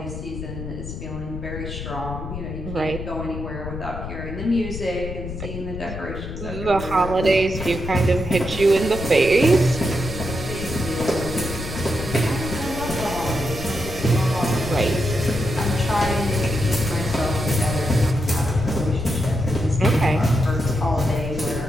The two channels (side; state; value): left; noise; rumble, 8 dB below the sound